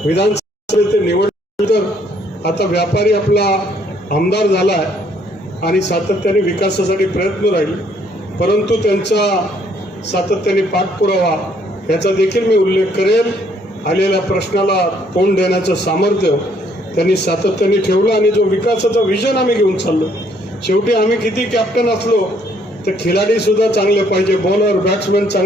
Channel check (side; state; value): both; normal; correlation 0.66